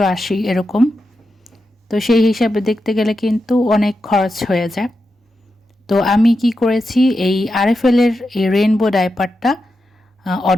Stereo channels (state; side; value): normal; both; correlation 0.88